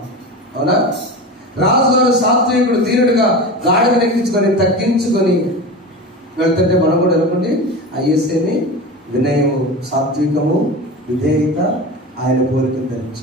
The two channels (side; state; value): both; normal; correlation 0.28